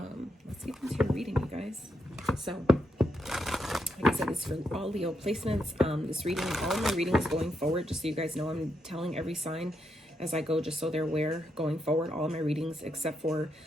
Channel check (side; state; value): both; normal; correlation 0.81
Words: let's get into your reading, you guys. So like I said, this is for all Leo placements. This reading, all of my readings going forward, just so you guys know, I'm telling every sign as I go, just so they're aware going forward. All of my readings, except for